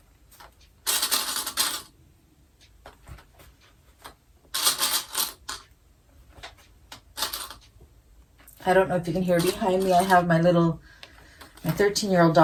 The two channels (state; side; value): identical; both; correlation 1.00